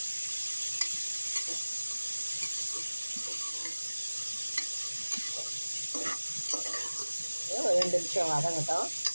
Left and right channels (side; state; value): both; inverted; correlation -1.00